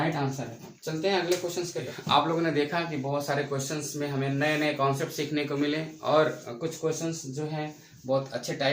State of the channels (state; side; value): identical; both; correlation 1.00